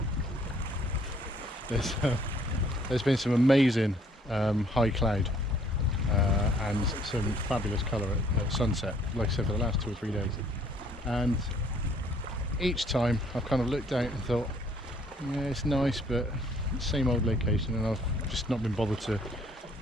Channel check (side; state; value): both; normal; correlation 0.62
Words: there's been some amazing high cloud and some fabulous colour at sunset, like I said, for the last 2 or 3 days. And each time I've kind of looked out and thought, yeah, it's nice, but same old location, and I've just not been bothered to